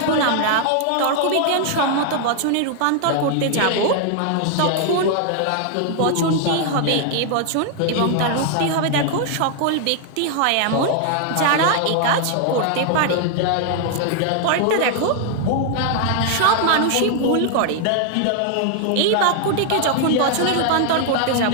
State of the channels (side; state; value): both; different; correlation 0.00